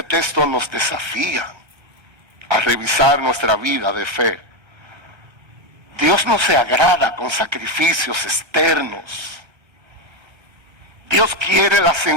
texto nos desafía a revisar nuestra vida de fe. Dios no se agrada con sacrificios externos. Dios quiere la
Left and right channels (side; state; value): left; late; 1.3 ms